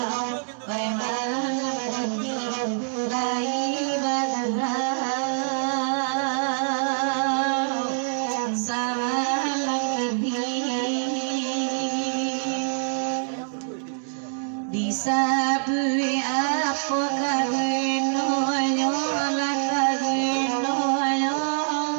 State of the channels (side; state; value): left; silent; digital silence